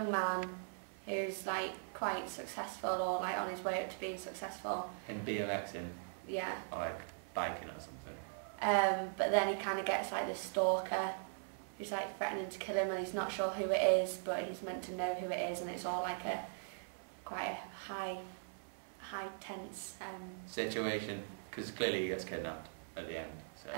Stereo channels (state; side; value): silent; left; 51 dB below the other